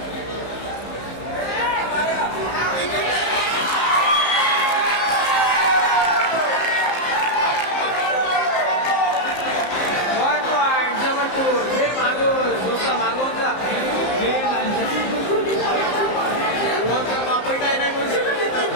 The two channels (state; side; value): late; right; 15 ms